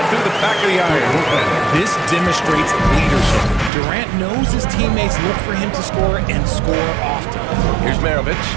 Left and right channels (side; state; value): left; drops out; at 3.7 s